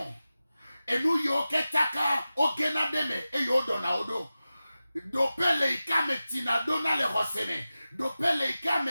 enu yo ke taka ogena deme e yo do na odo dopele ika me tinadona le roseme dopele ika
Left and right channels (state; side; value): inverted; both; correlation -0.95